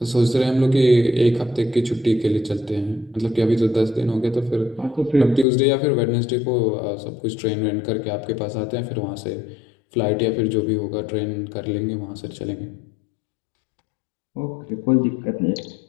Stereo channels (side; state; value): right; drops out; at 5.5 s